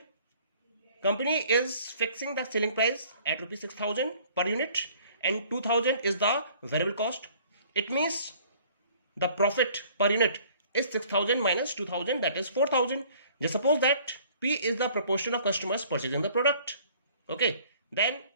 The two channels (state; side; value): inverted; both; correlation -0.55